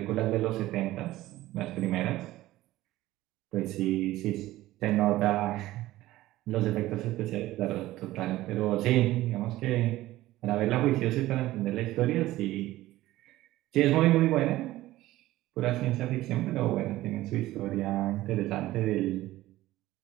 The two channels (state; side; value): quieter; left; 16.3 dB